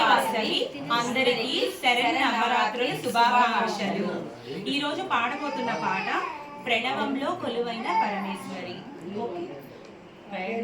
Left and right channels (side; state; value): both; identical; correlation 1.00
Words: వాసవి అందరికీ శరణ నవరాత్రుల శుభాకాంక్షలు। ఈ రోజు పాడబోతున్న పాట ప్రణవంలో కొలువైన పరమేశ్వరి।